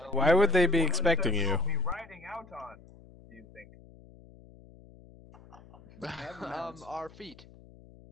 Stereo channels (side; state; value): left; noise; hum, 20 dB below the sound